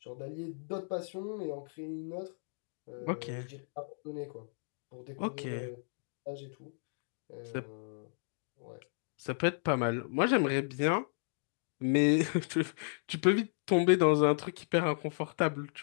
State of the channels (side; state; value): right; silent; digital silence